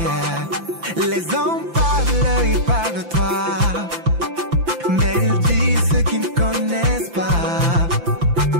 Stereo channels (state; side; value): late; left; 5.9 ms